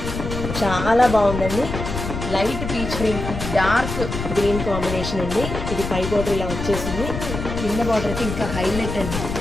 చాలా బాగుందండి. Light peach green, dark green combination అండి. ఇది పై బార్డర్ ఇలా వచ్చేసింది, కింద బార్డర్కి ఇంకా హైలైట్ అండి.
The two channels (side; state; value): left; noise; rumble, 6 dB below the sound